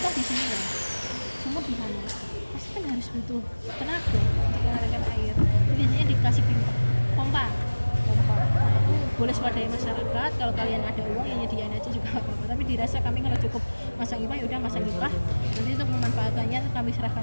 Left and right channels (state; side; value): inverted; both; correlation -1.00